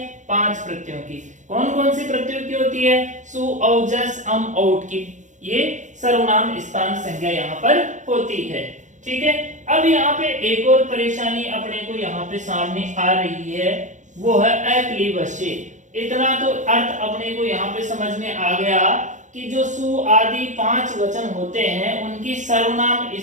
5 प्रत्ययों की। कौन कौन से प्रत्ययों की होती है? सु औ जस अम औट की, ये सर्वनाम स्थान संज्ञा यहाँ पर होती है। ठीक है, अब यहाँ पे एक और परेशानी अपने को यहाँ पे सामने आ रही है, वो है अक्लीबस्य। इतना तो अर्थ अपने को यहाँ पे समझ में आ गया कि जो सु आदि 5 वचन होते हैं उनकी सर्वनाम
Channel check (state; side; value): late; left; 0.35 ms